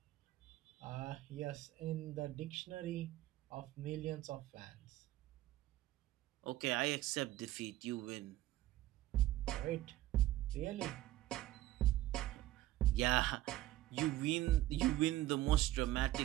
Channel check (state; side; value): quieter; left; 15.5 dB